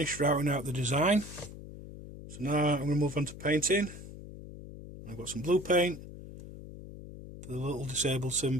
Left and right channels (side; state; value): left; noise; hum, 13 dB below the sound